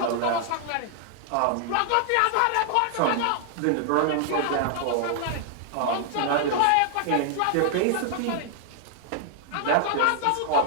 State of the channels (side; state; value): both; different; correlation 0.00